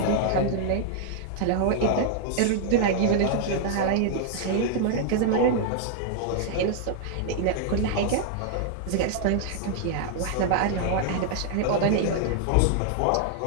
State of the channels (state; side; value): different; both; correlation -0.01